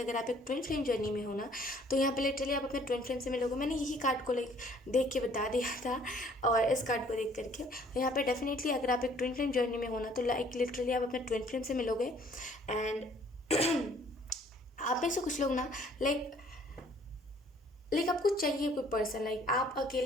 अगर आप एक ट्विन फ्लेम जर्नी में हो ना, तो यहाँ पे लिटरली आप अपने ट्विन फ्लेम से मिलोगे। मैंने यही कार्ड को लाइक देख के बता दिया था, और इस कार्ड को देख करके तो यहाँ पे डेफिनेटली अगर आप एक ट्विन फ्लेम जर्नी में हो ना, तो लाइक लिटरली आप अपने ट्विन फ्लेम से मिलोगे। एंड आप में से कुछ लोग ना लाइक आपको चाहिए कोई पर्सन, लाइक आप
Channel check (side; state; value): both; normal; correlation 0.58